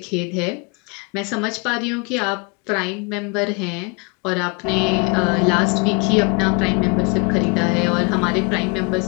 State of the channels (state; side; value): quieter; right; 31.8 dB